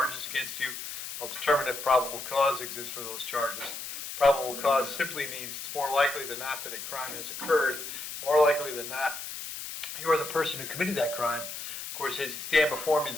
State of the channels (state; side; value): noise; left; hiss, 8 dB below the sound